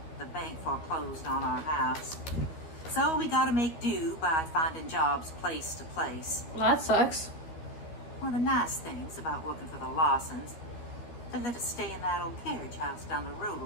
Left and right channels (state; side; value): late; right; 13 ms